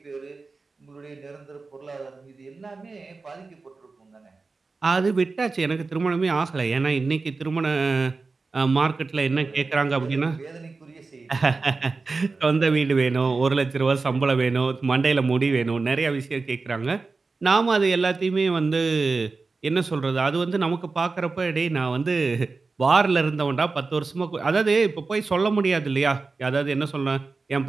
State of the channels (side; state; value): left; quieter; 4.0 dB